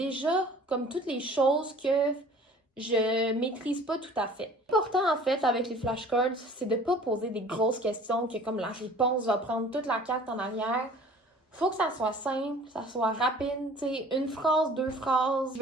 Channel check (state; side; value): normal; both; correlation 0.48